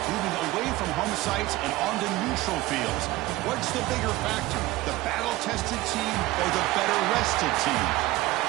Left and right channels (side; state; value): left; quieter; 18.1 dB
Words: moving away from home sites and onto neutral fields. What's the bigger factor, the battle-tested team or the better-rested team?